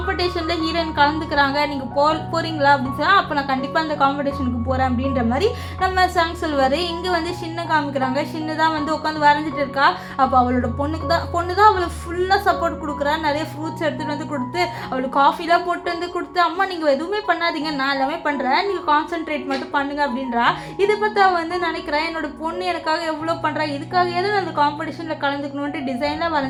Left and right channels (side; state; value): both; identical; correlation 1.00